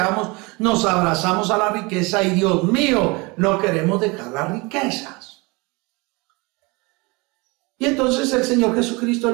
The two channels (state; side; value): quieter; left; 26.4 dB